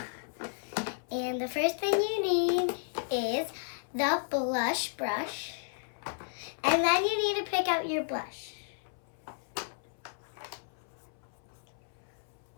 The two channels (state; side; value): silent; right; 56 dB below the other